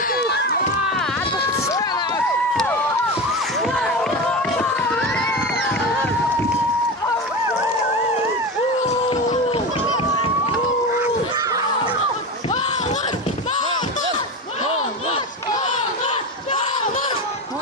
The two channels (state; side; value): normal; both; correlation 0.23